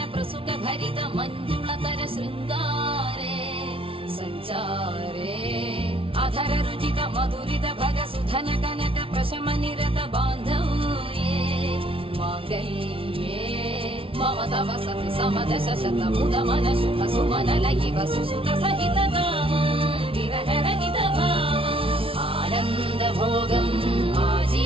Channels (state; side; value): late; left; 0.26 ms